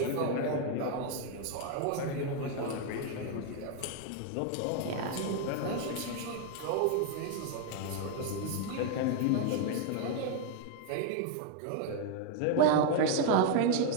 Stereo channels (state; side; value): different; both; correlation 0.01